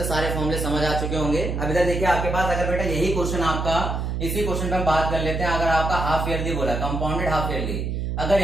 सारे फॉर्मूले समझ आ चुके होंगे। अब इधर देखिए आपके पास अगर बेटा यही क्वेश्चन आपका, इसी क्वेश्चन पे हम बात कर लेते हैं। अगर आपका हाफ ईयरली बोला, कंपाउंडेड हाफ ईयरली, अगर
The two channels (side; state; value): right; noise; hum, 2 dB below the sound